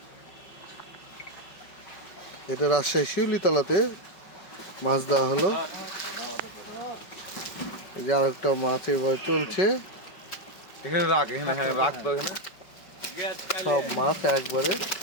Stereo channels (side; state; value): right; late; 5.2 ms